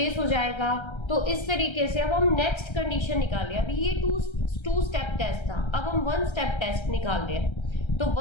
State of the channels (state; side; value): late; right; 1.3 ms